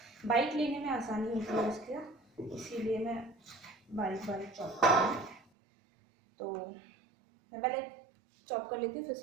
बाइट लेने में आसानी होती है उसके, इसीलिए मैं बारीक बारीक चॉप कर रही हूँ। तो मैं पहले चॉप कर लेती हूँ, फिर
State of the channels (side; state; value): left; drops out; at 5.4 s